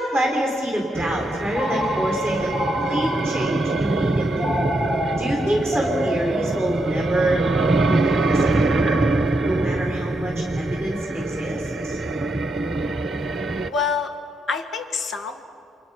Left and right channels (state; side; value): normal; both; correlation 0.81